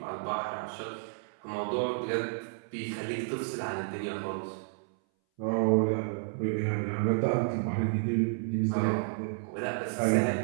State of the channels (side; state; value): left; silent; 57 dB below the other